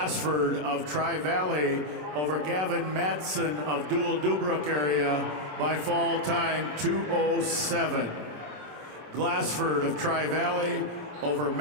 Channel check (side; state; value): left; late; 27 ms